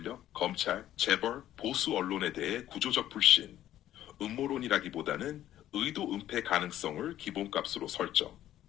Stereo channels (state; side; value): quieter; right; 12.7 dB